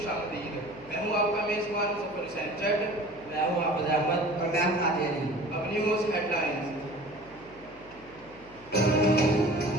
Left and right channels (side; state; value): left; noise; hum, 24 dB below the sound